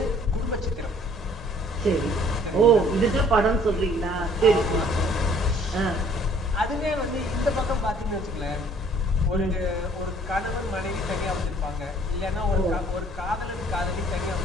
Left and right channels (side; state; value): both; normal; correlation 0.58